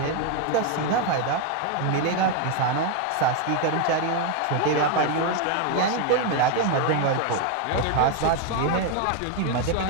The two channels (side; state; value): both; different; correlation 0.01